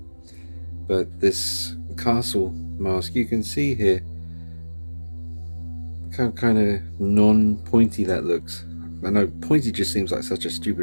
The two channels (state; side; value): inverted; both; correlation -1.00